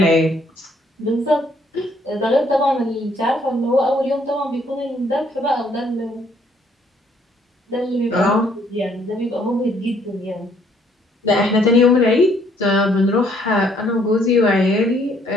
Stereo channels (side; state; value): both; normal; correlation 0.66